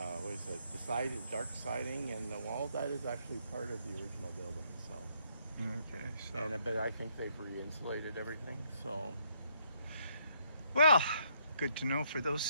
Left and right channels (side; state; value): both; inverted; correlation -0.71